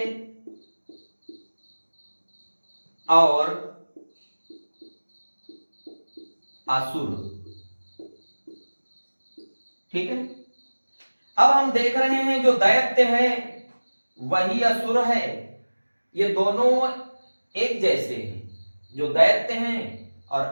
और असुर। ठीक है, अब हम देख रहे हैं जो दैत्य है वही असुर है, ये दोनों एक जैसे हैं, जो दैत्य हैं और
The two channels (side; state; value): both; inverted; correlation -1.00